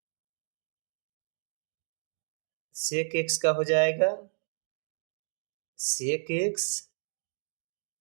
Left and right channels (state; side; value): silent; left; digital silence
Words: सेक एक्स का हो जाएगा sec x